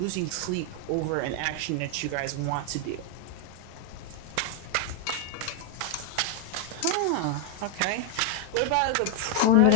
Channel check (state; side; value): different; both; correlation 0.01